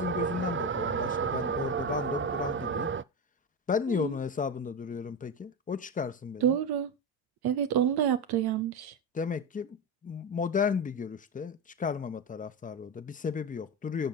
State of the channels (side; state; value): both; normal; correlation 0.16